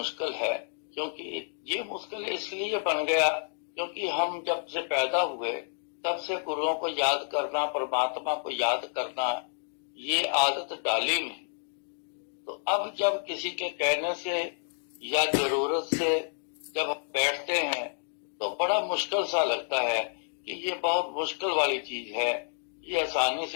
है। क्योंकि ये मुश्किल इसलिए बन गया क्योंकि हम जब से पैदा हुए तब से गुरुओं को याद करना, परमात्मा को याद करना, ये आदत डाली नहीं। तो अब जब किसी के कहने से या जरूरत से जब हम बैठते हैं तो बड़ा मुश्किल सा लगता है कि ये बहुत मुश्किल वाली चीज है, ये आसानी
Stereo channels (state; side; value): silent; right; digital silence